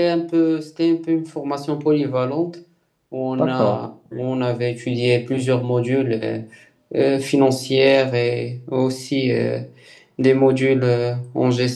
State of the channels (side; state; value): both; identical; correlation 1.00